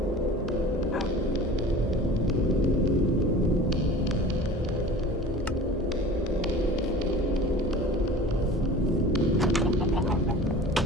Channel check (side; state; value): both; normal; correlation 0.40